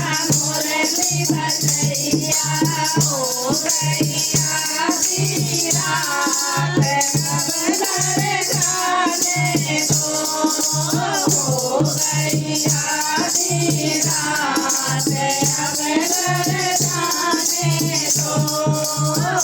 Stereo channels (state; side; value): identical; both; correlation 1.00